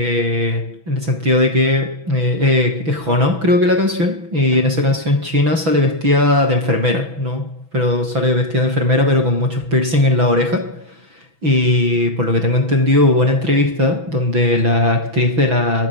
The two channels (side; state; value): left; late; 6.1 ms